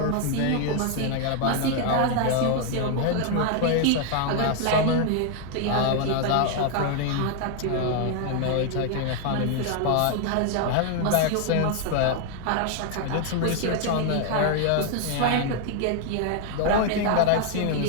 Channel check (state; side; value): different; both; correlation 0.00